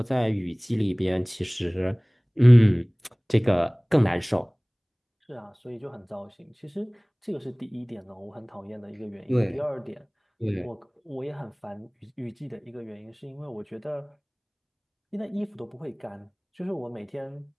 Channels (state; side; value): identical; both; correlation 1.00